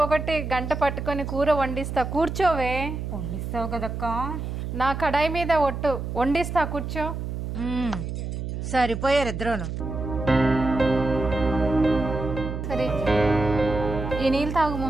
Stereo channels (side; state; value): right; noise; hum, 5 dB below the sound